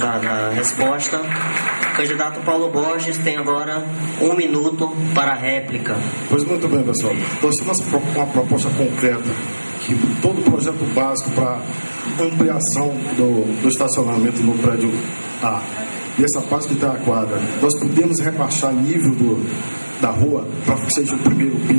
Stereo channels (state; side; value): inverted; both; correlation -1.00